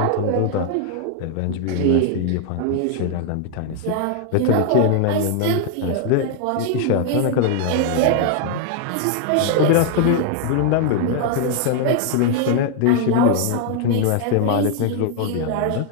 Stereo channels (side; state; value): both; different; correlation 0.00